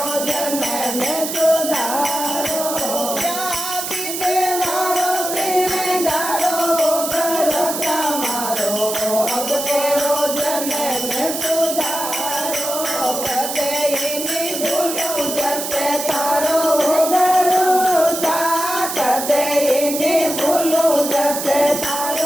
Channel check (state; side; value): noise; right; hiss, 5 dB below the sound